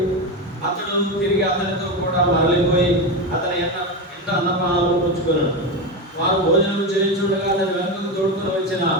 అతడు తిరిగి అతనితో కూడా మరలిపోయి అతని ఇంట అన్నపానాలు పుచ్చుకున్నాడు. వారు భోజనం చేయించుండగా అతని వెనుకకు తోడుకొని వచ్చిన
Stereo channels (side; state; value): both; normal; correlation 0.16